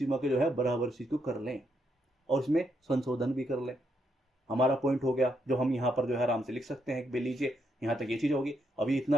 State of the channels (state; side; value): normal; both; correlation 0.78